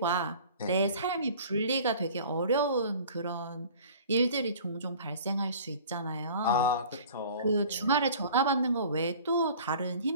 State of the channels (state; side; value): inverted; both; correlation -0.46